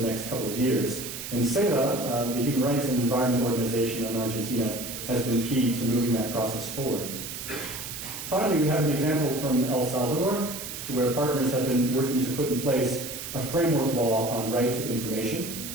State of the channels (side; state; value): right; noise; hiss, 8 dB below the sound